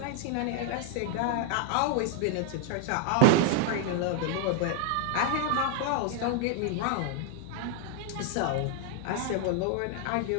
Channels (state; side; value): different; both; correlation 0.00